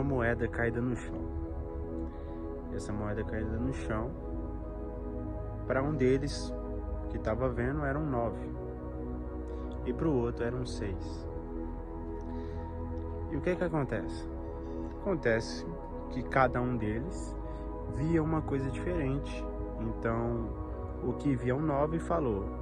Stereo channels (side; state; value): both; identical; correlation 1.00